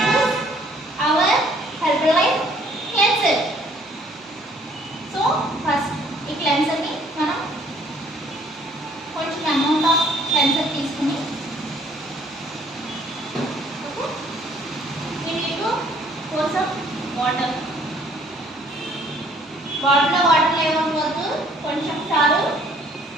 our Herbalife cleanser. So first ఈ cleanser ని మనం కొంచెం amount of cleanser తీసుకుని we need to pour some water. బాటిల్లో వాటర్ లేకపోతే కొంచెం చాలు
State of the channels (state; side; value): normal; both; correlation 0.60